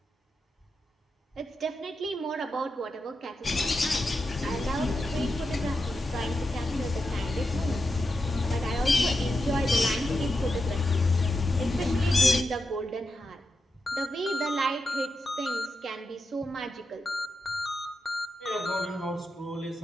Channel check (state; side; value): normal; both; correlation 0.88